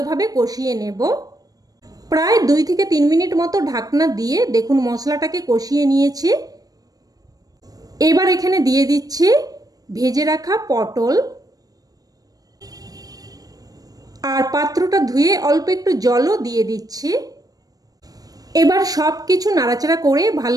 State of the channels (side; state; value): left; late; 0.18 ms